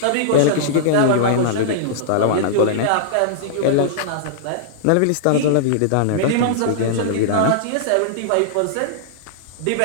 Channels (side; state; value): both; different; correlation -0.02